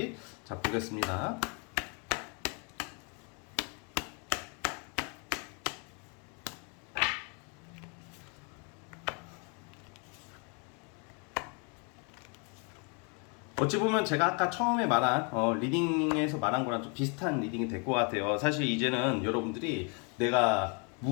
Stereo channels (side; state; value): right; quieter; 35.7 dB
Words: 자 보겠습니다. 어찌 보면 제가 아까 처음에 말한 리딩에서 말한 거랑 좀 비슷한 리딩이 될 것 같아요. 사실 이제는 여러분들이 내가